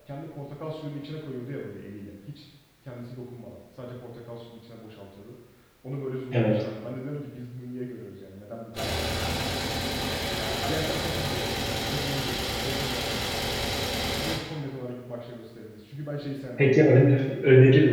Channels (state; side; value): identical; both; correlation 1.00